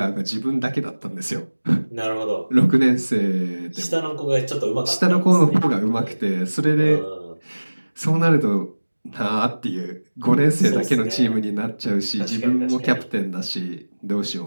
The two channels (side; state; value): both; inverted; correlation -1.00